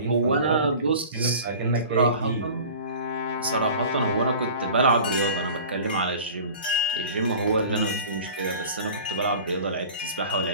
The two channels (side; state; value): both; inverted; correlation -0.41